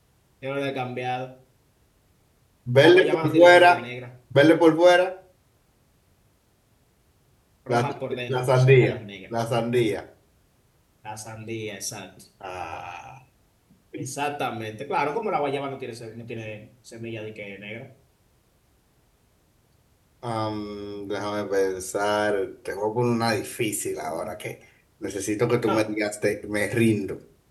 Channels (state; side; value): identical; both; correlation 1.00